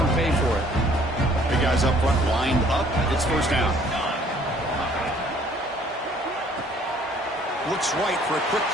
them pay for it. Big guys up front lined up. It's first down. Looks right for a quick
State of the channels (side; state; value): both; normal; correlation 0.59